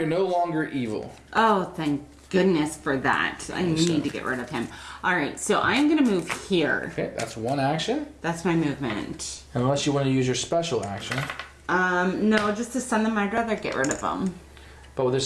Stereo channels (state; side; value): identical; both; correlation 1.00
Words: no longer evil. Oh, thank goodness for that. I need so. to get rid of him. All right, so I'm going to move here. Okay, that's one action. That's my movement. Unless you want to use your special action. No, just to send them, I'd rather get rid of them. But with a